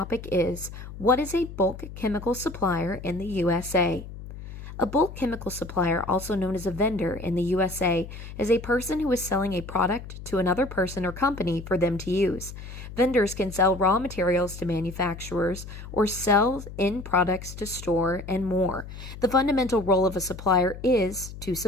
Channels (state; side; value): noise; left; hum, 12 dB below the sound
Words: is, what is a bulk chemical supplier in the USA? A bulk chemical supplier, also known as a vendor in the USA, is a person who is selling a product to another person or company for them to use. Vendors can sell raw materials to manufacturers or sell end products to store and more. The fundamental role of a supplier is to